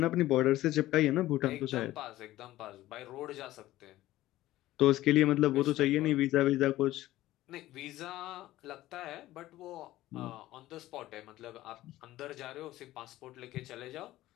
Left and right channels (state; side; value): quieter; right; 15.7 dB